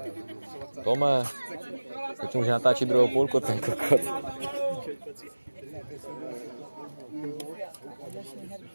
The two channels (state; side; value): inverted; both; correlation -1.00